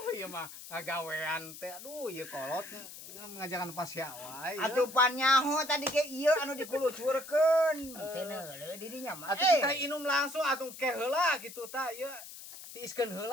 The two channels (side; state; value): left; noise; hiss, 14 dB below the sound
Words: ieu mah ngagawean teh. Aduh, ieu kolot ngajakan pasya wae. Atupan nyaho tadi ke ieu anu dikulucurkeun. Teu neuleuh didinya mah. Atuh kita inum langsung atuh ke heula gitu tah ieu. Tiiskeun